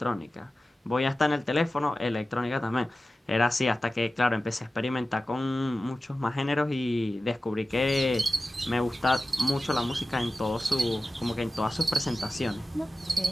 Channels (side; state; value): both; normal; correlation 0.95